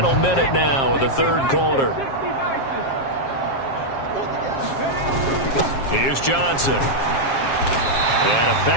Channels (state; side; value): late; right; 7.4 ms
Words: minute now of the 3rd quarter. Here's Johnson. And